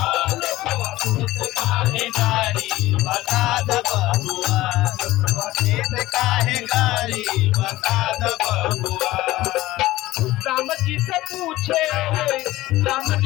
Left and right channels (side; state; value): right; quieter; 17.2 dB